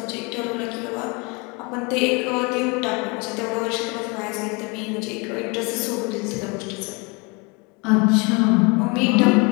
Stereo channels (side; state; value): right; quieter; 29.4 dB